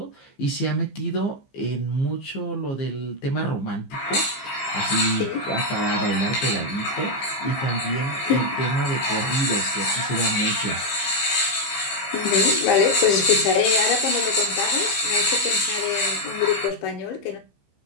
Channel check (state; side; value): late; right; 15 ms